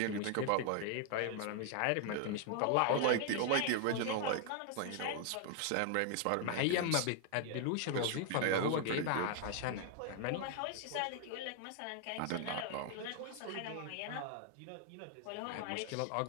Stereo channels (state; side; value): different; both; correlation 0.00